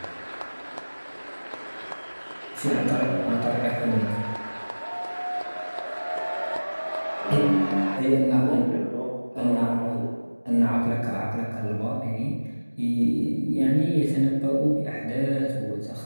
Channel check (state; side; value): inverted; both; correlation -1.00